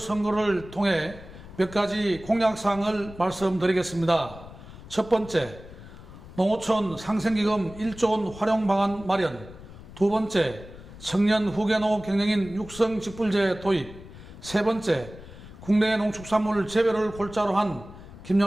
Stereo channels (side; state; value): left; noise; rumble, 16 dB below the sound